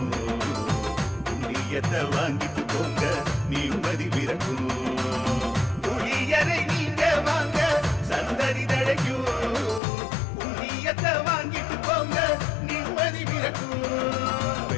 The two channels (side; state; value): right; drops out; at 9.8 s